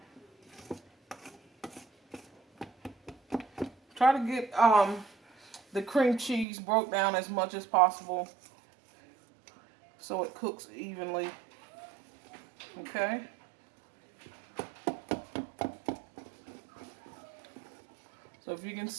Try to get the cream cheese broke down as much as possible so it cooks evenly. Okay? So if you can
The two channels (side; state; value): left; drops out; at 6.5 s